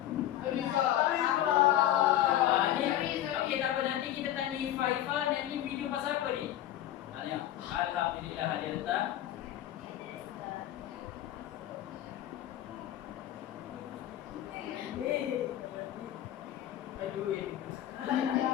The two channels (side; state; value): right; quieter; 12.8 dB